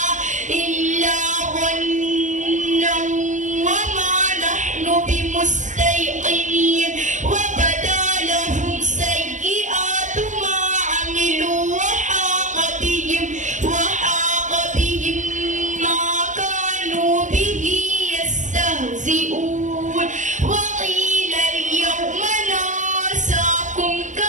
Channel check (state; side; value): late; left; 0.36 ms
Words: إلا ظنا وما نحن بمستيقنين وبدا لهم سيئات ما عملوا وحاق بهم ما كانوا به يستهزئون وقيل اليوم ننساكم